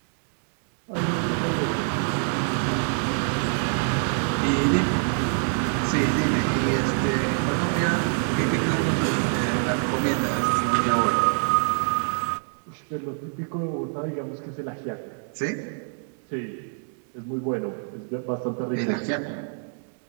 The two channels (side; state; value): left; silent; 58 dB below the other